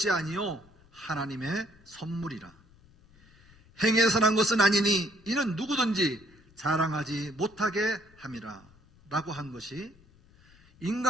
아니요 하나님의 선물이라. 행해서 난 것은 아니니 이는 누구든지 자랑하지 못하게 함이라 라고 한 것이,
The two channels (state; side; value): noise; left; rumble, 28 dB below the sound